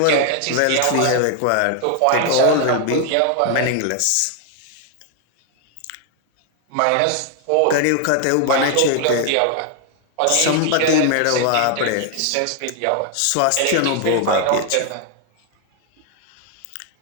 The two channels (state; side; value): different; both; correlation 0.00